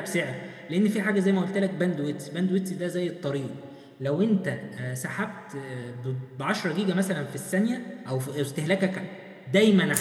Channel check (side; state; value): both; identical; correlation 1.00